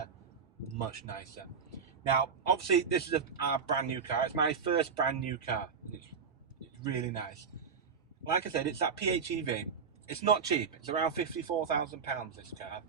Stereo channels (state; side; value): quieter; left; 6.0 dB